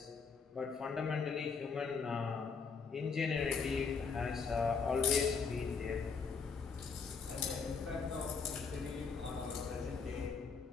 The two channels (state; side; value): quieter; right; 5.3 dB